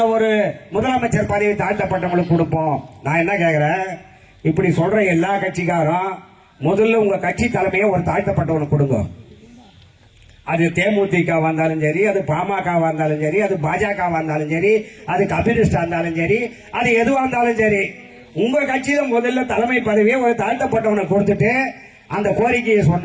ஒரு முதலமைச்சர் பதவி தாழ்த்தப்பட்டவங்களுக்கு கொடுப்போம். நான் என்ன கேக்குறேன், இப்படி சொல்ற எல்லா கட்சிக்காரும் முதல்ல உங்க கட்சி தலைமையை ஒரு தாழ்த்தப்பட்டவனுக்கு கொடுங்க. அது தேமுதிக வந்தாலும் சரி, அது பாமக வந்தாலும் சரி, அது பாஜக வந்தாலும் சரி, அது கம்யூனிஸ்டா இருந்தாலும் சரி, அது எதுவா இருந்தாலும் சரி, உங்க கட்சியில முதல்ல தலைமை பதவியை ஒரு தாழ்த்தப்பட்டவனுக்கு கொடுத்துட்டு அந்த கோரிக்கையை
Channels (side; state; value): both; identical; correlation 1.00